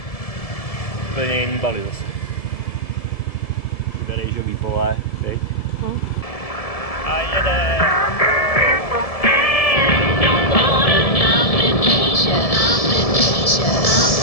Úplně jiný Bali zase. Všude rejžový pole, teď. A jede!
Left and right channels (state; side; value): late; right; 1.7 ms